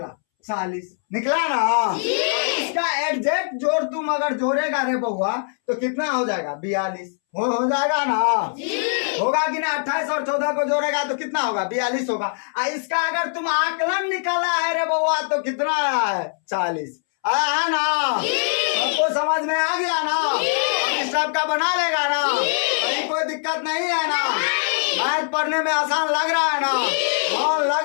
40 निकला ना। इसका एग्जैक्ट जोड़ तुम अगर जोड़ेगा रे बउआ तो कितना हो जाएगा 42 हो जाएगा ना। होगा कि ना। 28 और 14 को जोड़ेगा तो कितना होगा 42 होगा। इसका अगर तुम आकलन निकाला है रे बउआ तो कितना आया है 40 आया है ना। सबको समझ में आ गया ना। इस टाइप का बना लेगा ना। कहीं कोई दिक्कत नहीं है ना। मैथ पढ़ने में आसान लग रहा है ना।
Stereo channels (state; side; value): silent; right; 64 dB below the other